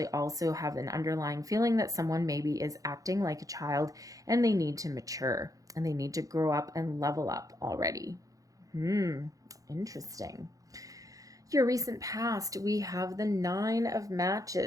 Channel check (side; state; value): left; late; 0.17 ms